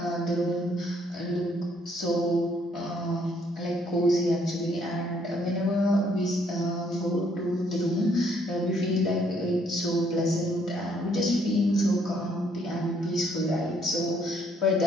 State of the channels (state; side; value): normal; both; correlation 0.67